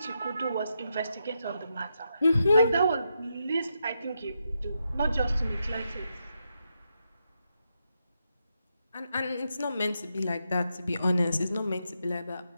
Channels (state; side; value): inverted; both; correlation -0.83